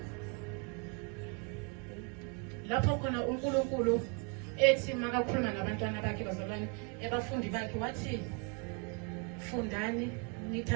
lapho khona uNkulunkulu ethi makakhuluma nabantwana bakhe bazalwane abafundi bakhe wathi fundani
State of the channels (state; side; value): quieter; left; 32.4 dB